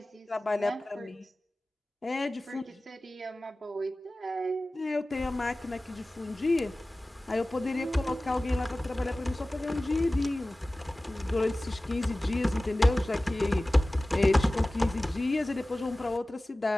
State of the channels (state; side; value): normal; both; correlation 0.97